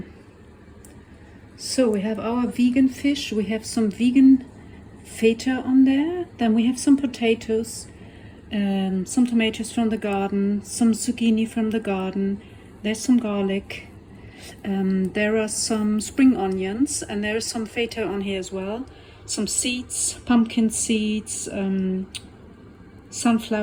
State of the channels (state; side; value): identical; both; correlation 1.00